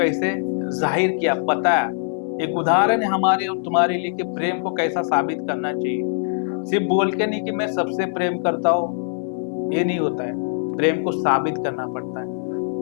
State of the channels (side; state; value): right; silent; digital silence